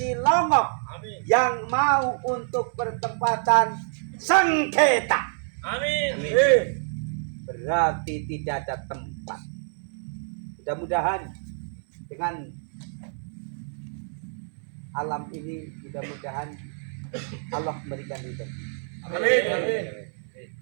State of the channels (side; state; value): left; silent; 60 dB below the other